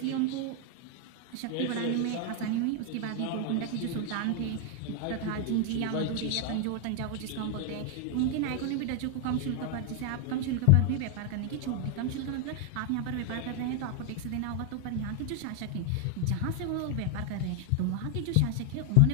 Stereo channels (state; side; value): different; both; correlation 0.00